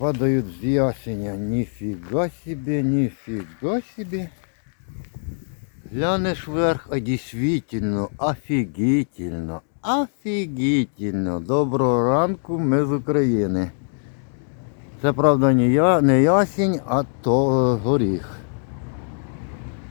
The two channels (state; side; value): silent; right; 64 dB below the other